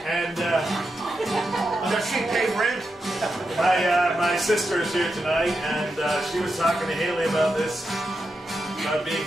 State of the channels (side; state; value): both; normal; correlation 0.87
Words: And Does she pay rent? my sister is here tonight, and she was talking to Haley about this, about being